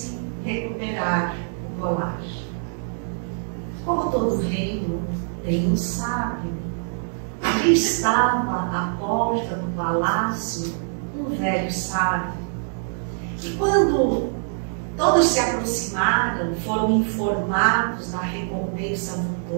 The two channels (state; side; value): silent; left; digital silence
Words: recuperar o colar. Como todo reino tem um sábio, ali estava à porta do palácio um velho sábio. E quando todos se aproximaram, foram informados da recompensa